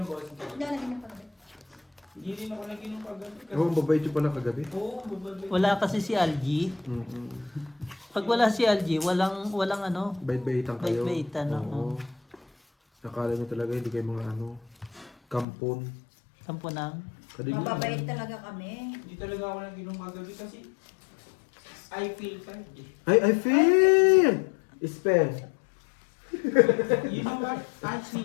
boss? Hindi, nag-inom pa kami. Hindi rin ako naginom kagabi. Oo, babait yung pala kagabi. Oo, babalik. Wala kasi si Algie. Pag wala si Algie, walang ano. Bait-baitan kayo. Bait-baitan, oo. Nakala nyo talaga hindi kayo mga ano, kampon. Sampo nang. Kadignan. Mababait talaga kami. Hindi talaga ako naginom kagabi kasi I feel tired eh. I feel! Spell. You know what? I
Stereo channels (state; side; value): drops out; right; at 15.5 s